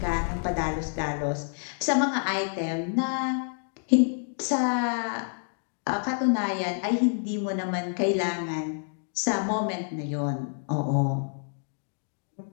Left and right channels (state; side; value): silent; right; digital silence